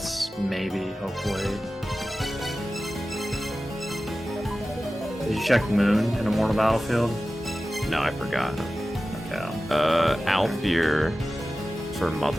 Maybe, hopefully. Did you check Moon in Immortal Battlefield? No, I forgot. Okay. Alfir for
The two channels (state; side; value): normal; both; correlation 0.95